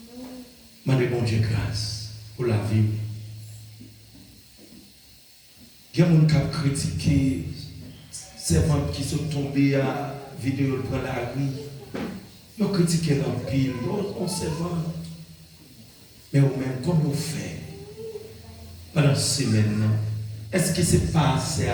Mandez bon Dieu grâce pour la vie. Il y a des gens qui ont critiqué ces gens qui sont tombés à vidéo pour la rue. Ils ont critiqué l'empile, on se vend. Mais au même, comme on fait pendant cette semaine, est-ce que c'est passé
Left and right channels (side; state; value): both; identical; correlation 1.00